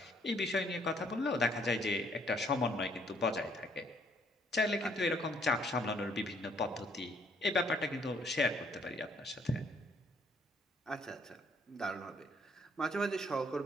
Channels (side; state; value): both; normal; correlation 0.66